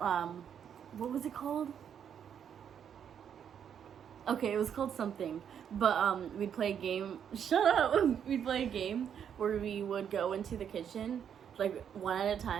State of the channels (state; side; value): quieter; left; 8.4 dB